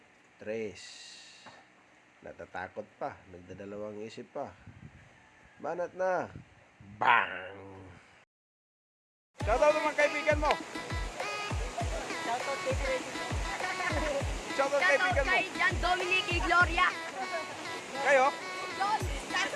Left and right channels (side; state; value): both; identical; correlation 1.00